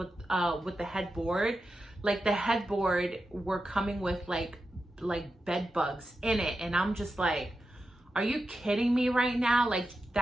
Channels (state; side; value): normal; both; correlation 0.90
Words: the headboard, like the headboard were coming with like bed bugs in it. And I'm just like, are you kidding me right now? Like